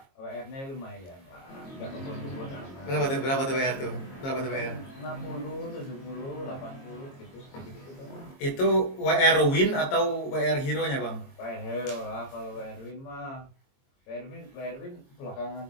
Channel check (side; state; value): right; late; 22 ms